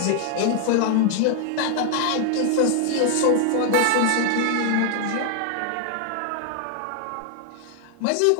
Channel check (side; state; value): both; different; correlation 0.00